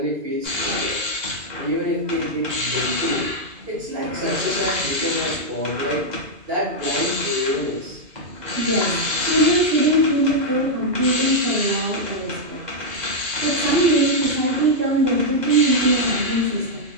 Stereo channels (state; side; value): late; left; 2.0 ms